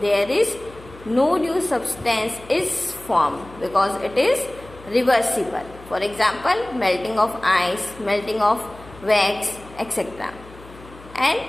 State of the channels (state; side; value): noise; left; hum, 20 dB below the sound